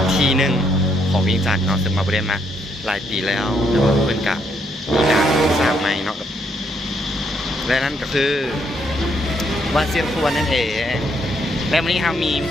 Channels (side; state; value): both; normal; correlation 0.73